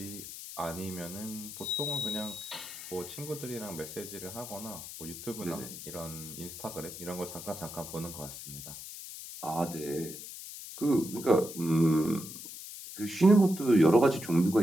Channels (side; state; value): left; noise; hiss, 11 dB below the sound